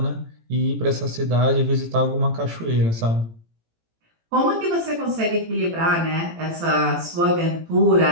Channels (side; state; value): left; late; 18 ms